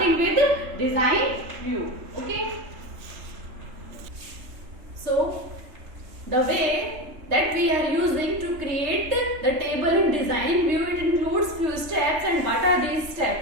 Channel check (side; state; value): left; late; 3.3 ms